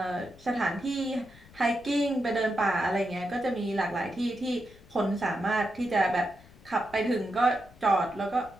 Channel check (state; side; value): noise; left; rumble, 23 dB below the sound